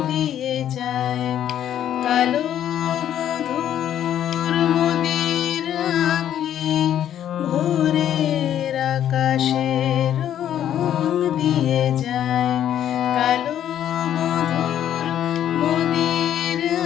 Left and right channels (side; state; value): right; quieter; 10.6 dB